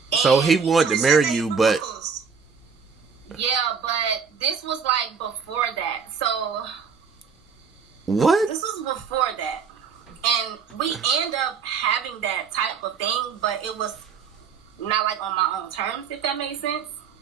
So he wanted to marry you, but... Yeah, but this was like before that. So... What? This was before that. And we end up having that type of thing, but it was not like on my own terms, if that makes sense.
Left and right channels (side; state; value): left; quieter; 6.0 dB